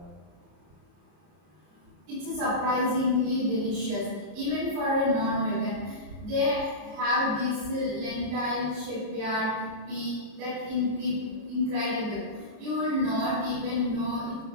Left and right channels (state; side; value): late; left; 33 ms